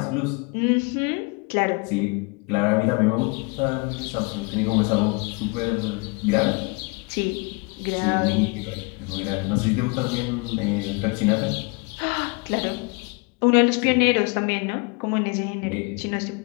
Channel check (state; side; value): quieter; right; 30.1 dB